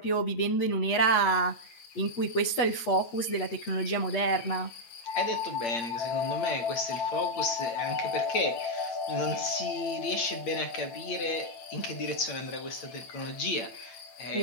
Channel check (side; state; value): right; late; 8.4 ms